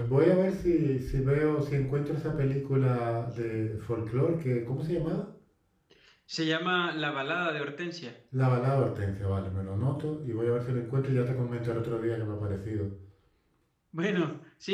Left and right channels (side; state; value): both; identical; correlation 1.00